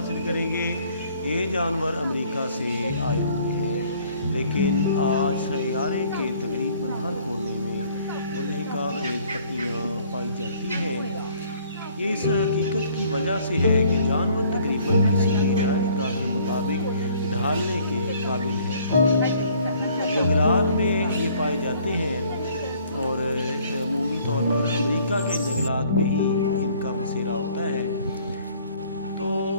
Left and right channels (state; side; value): inverted; both; correlation -0.58